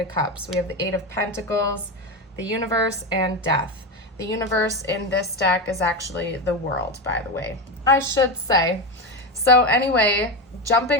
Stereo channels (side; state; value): both; normal; correlation 0.16